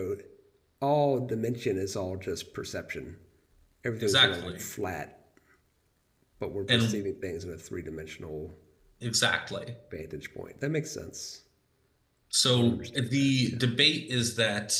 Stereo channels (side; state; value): both; identical; correlation 1.00